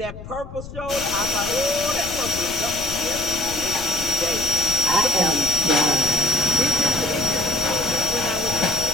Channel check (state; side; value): noise; left; rumble, 13 dB below the sound